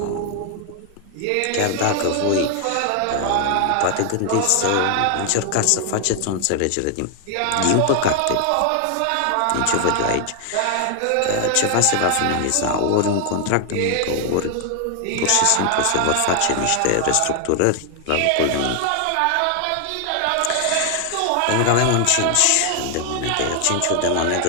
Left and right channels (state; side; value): different; both; correlation 0.00